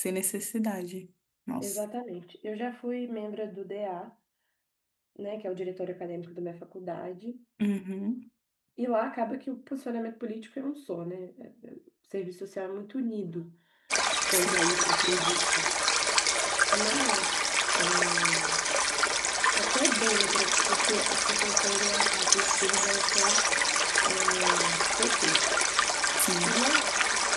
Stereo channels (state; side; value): identical; both; correlation 1.00